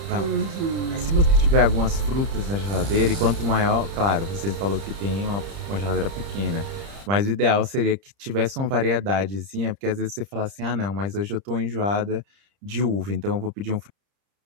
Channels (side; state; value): left; late; 30 ms